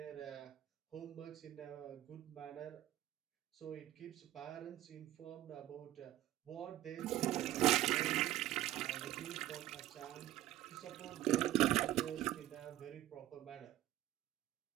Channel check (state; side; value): quieter; left; 14.2 dB